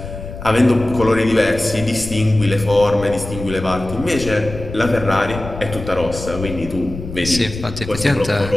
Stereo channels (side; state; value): left; noise; rumble, 10 dB below the sound